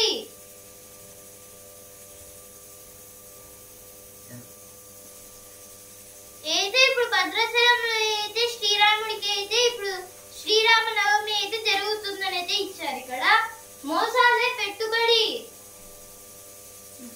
అయితే ఇప్పుడు భద్రాచలంలో అయితే శ్రీరాముడికి అయితే ఇప్పుడు శ్రీరామనవమి అయితే జరుగుతుందని అయితే ఇచ్చారు. ఇక్కడ మోసాలే పెట్టుబడి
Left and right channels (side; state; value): both; identical; correlation 1.00